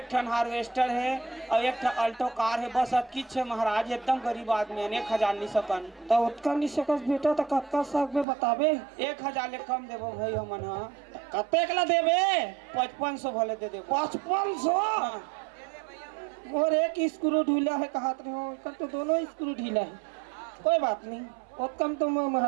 ठन हार्वेस्टर है और 1 ठन अल्टो कार है, बस किच है महाराज। एकदम गरीब आदमी है। 1000 नहीं सकन तो उतना नहीं सकस बेटा। तो कत्का सक में बताबे? 1000 ले कम देबो भाई हमन। हाँ कतेक ला देबे? 5500 भले दे देबो। 5500? और एक स्क्रू ढीला है कहत रहे हो, कल तो दोनों स्क्रू ढीला है। कोई बात नहीं, बहुत कम तो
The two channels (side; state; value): left; drops out; at 8.2 s